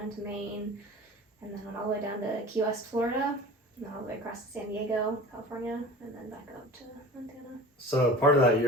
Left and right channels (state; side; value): normal; both; correlation 0.39